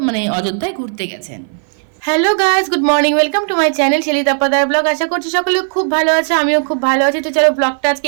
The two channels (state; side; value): silent; left; 58 dB below the other